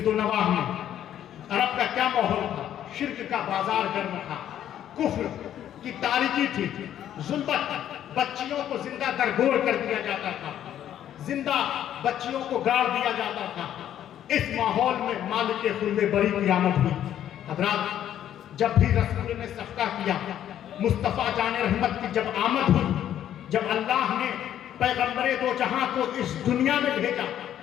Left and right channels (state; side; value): quieter; right; 10.9 dB